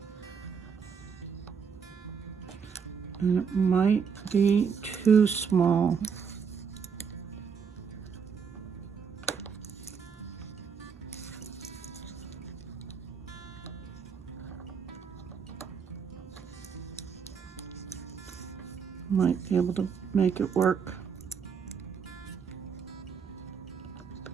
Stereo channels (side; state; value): left; quieter; 6.4 dB